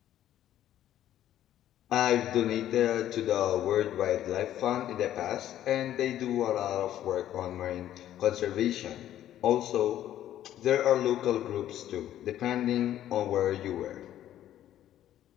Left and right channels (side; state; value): right; quieter; 12.0 dB